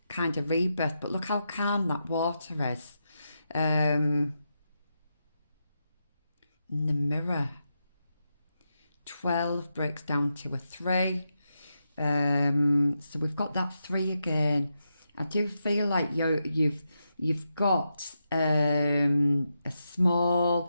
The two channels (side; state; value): both; inverted; correlation -0.86